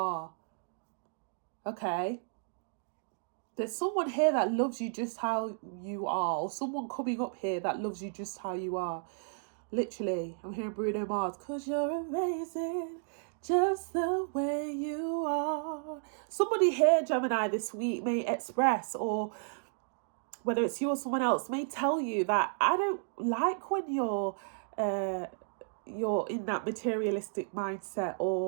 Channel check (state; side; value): silent; left; digital silence